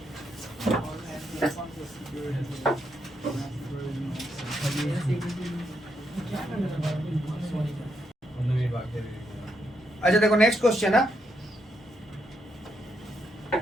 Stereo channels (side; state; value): both; normal; correlation 0.79